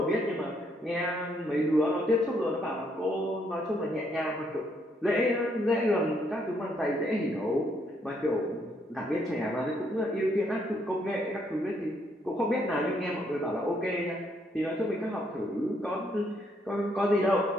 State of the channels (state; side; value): normal; both; correlation 0.72